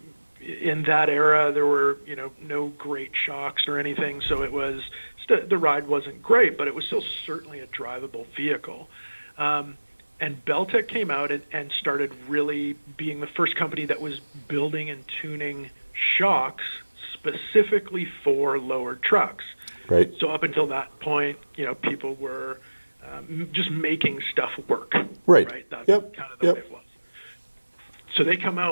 that era, there were no great shocks or anything, so it was the ride wasn't great, but it was still certainly a drivable vehicle. And BellTech came out and started really being the first company that was building and tuning shocks specifically for lowered trucks. Right. So up until that point, people were just making stuff work. Right. That's kind of the way it was. So they come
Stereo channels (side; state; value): both; inverted; correlation -1.00